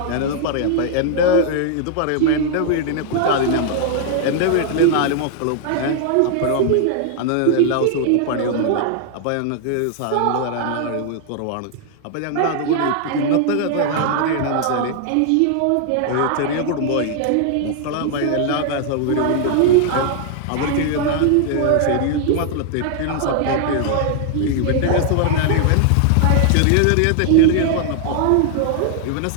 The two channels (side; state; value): both; different; correlation 0.00